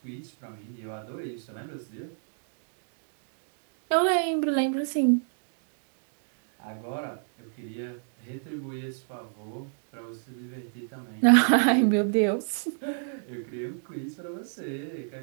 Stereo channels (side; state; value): left; silent; digital silence